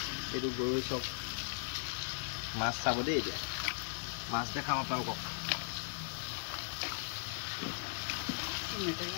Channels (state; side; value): silent; right; 52 dB below the other